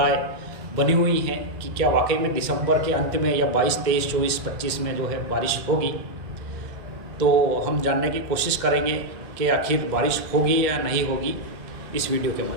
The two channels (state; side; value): late; left; 2.1 ms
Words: बनी हुई हैं कि क्या वाकई में दिसंबर के अंत में या 22, 23, 24, 25 में जो है बारिश होगी। तो हम जानने की कोशिश करेंगे कि आखिर बारिश होगी या नहीं होगी इस वीडियो के